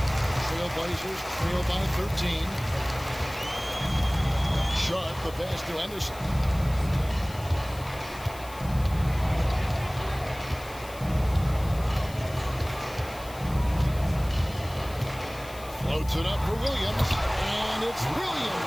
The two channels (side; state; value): left; noise; hiss, 18 dB below the sound